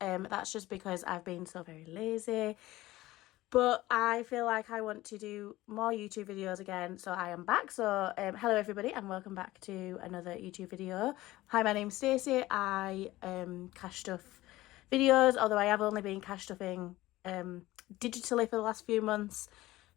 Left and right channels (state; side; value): quieter; right; 17.4 dB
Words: just because I've been so very lazy. But I feel like I want to do more YouTube videos again, so I am back. So hello everybody and welcome back to another YouTube video. Hi, my name's Stacey. I cash stuff videos, although I have only been cash stuffing digitally for the last few months.